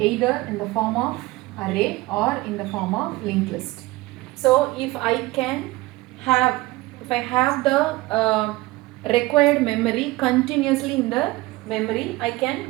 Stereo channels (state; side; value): quieter; left; 20.2 dB